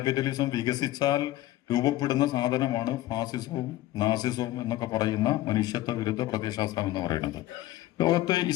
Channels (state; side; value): quieter; right; 15.3 dB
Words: വികസിച്ചാൽ രൂപപ്പെടുന്ന സാധനമാണ് ഫാസിസവും നാസിസവും എന്നൊക്കെ പറയുന്ന മനുഷ്യത്വ വിരുദ്ധ പ്രത്യയശാസ്ത്രം എന്ന് പറയുന്നത്. ലോകത്ത്